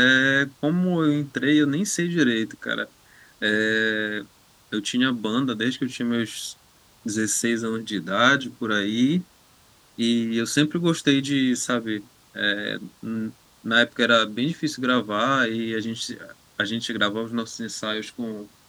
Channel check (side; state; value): both; identical; correlation 1.00